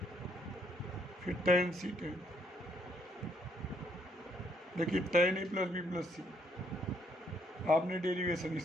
फिर टेन सी टेन। देखिए ten A plus B plus सी, आपने डेरिवेशन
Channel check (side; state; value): both; normal; correlation 0.70